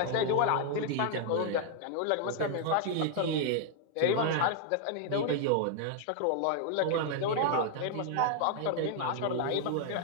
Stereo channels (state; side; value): different; both; correlation 0.00